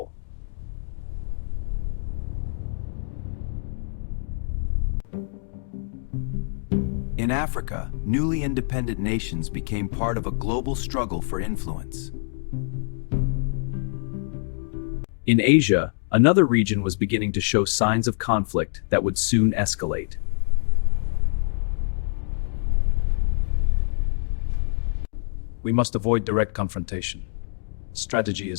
In Africa, newly independent nations became part of a global struggle for influence. In Asia, another region was beginning to show signs of conflict that would soon escalate. We must avoid direct confrontation. Strategy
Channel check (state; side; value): silent; right; digital silence